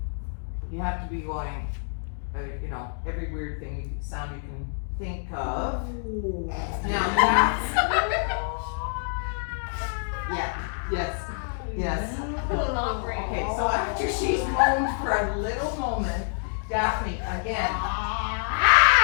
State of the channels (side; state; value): right; silent; digital silence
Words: You have to be going, every weird thing sound you can think of. Now that's, yeah, yes. Not great. Okay, so after she's moaned for a little moment, Daphne, again.